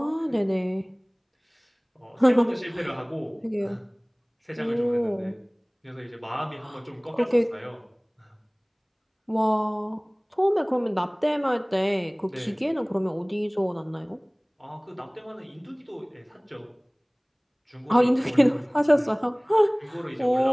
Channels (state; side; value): identical; both; correlation 1.00